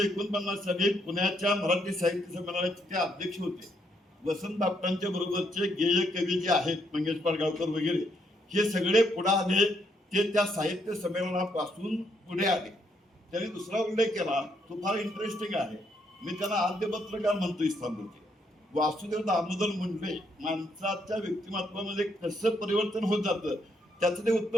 साली पुण्याच्या मराठी साहित्य संमेलनाचे ते अध्यक्ष होते. वसंत बापटांच्या बरोबरचे गेय कवी जे आहेत मंगेश पाडगावकर वगैरे हे सगळे पुढे आले. ते त्या साहित्य संमेलनापासून पुढे आले. त्यांनी दुसरा उल्लेख केला तो फार इंटरेस्टिंग आहे. मी त्यांना आद्य पत्रकार म्हणतो इस्लामपूरचे. वासुदेव दामोदर मुंडे माणसाच्या व्यक्तिमत्वामध्ये कसं परिवर्तन होत जातं त्याचं ते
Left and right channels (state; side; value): normal; both; correlation 0.74